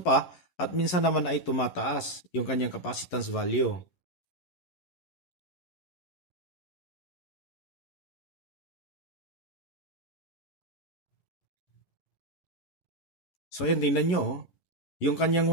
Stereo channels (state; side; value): late; right; 11 ms